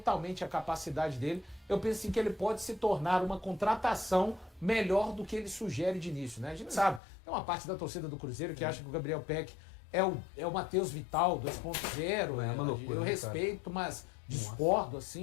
a capacidade dele, eu penso assim, que ele pode se tornar uma contratação melhor do que ele sugere de início, né? A gente sabe, tem uma parte da torcida do Cruzeiro que acha que o Gabriel Peck é o Matheus Vital 2.0, uma loucura, eu né, respeito, mas discordo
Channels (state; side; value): drops out; right; at 7.0 s